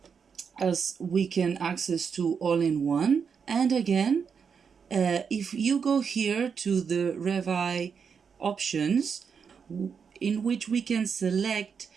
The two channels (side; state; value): left; quieter; 6.4 dB